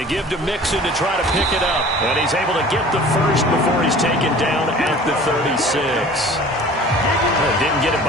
give to Mixon to try to pick it up. And he's able to get the first before he's taken down at the 36. Didn't get it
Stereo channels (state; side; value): normal; both; correlation 0.45